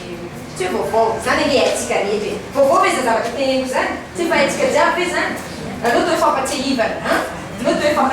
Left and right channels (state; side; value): identical; both; correlation 1.00